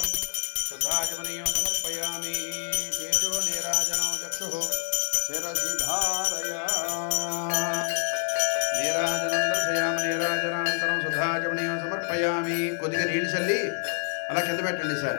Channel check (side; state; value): right; silent; digital silence